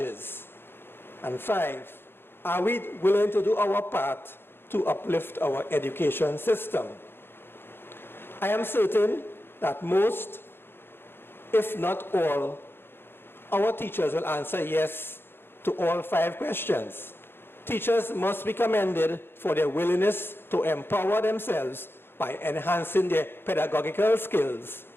And 5, are we willing to do our part to uplift our education system? I am certain that most, if not all, our teachers will answer yes to all 5 questions. Teachers must be commended for their willingness to empower themselves by enhancing their pedagogical skills,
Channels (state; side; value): late; right; 0.11 ms